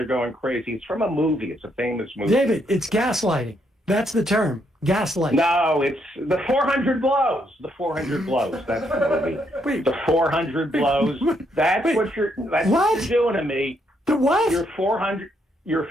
going crazy. It's from a movie. It's a famous movie. David, it's gaslighting. That's the term. Gaslighting. No, it's the 400 blows. The 400 blows. That's the movie. Wait. The 400 blows. That's what you're doing to me. The what? You're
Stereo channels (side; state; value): both; normal; correlation 0.75